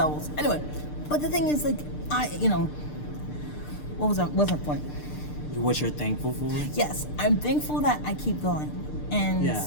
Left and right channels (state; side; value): late; right; 6.7 ms